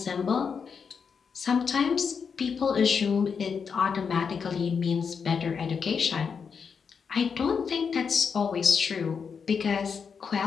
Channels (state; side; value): quieter; right; 6.1 dB